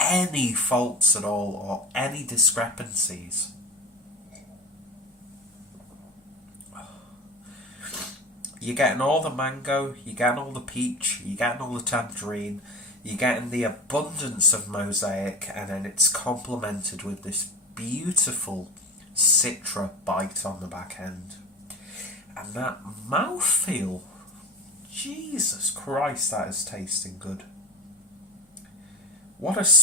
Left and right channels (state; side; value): normal; both; correlation 0.28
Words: faults at all or any discrepancies. You're getting all the mango, you're getting all the peach, you're getting all the tangerine, you're getting the abundance of mosaic, and then it's complemented with this beautiful citra bite on the back end. And that mouthfeel, Jesus Christ, that is tasting good. What a